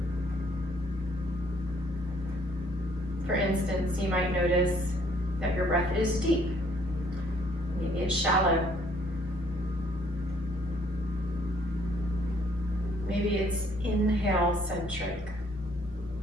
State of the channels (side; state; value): both; normal; correlation 0.64